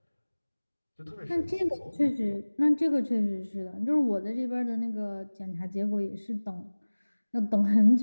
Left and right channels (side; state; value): both; inverted; correlation -1.00